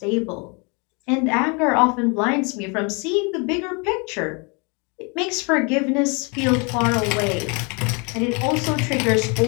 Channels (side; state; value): right; quieter; 31.9 dB